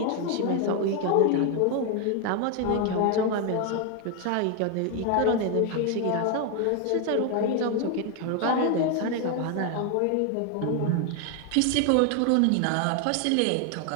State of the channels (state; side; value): different; both; correlation 0.01